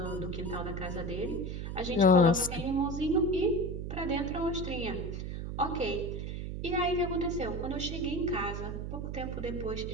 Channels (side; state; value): right; noise; hum, 5 dB below the sound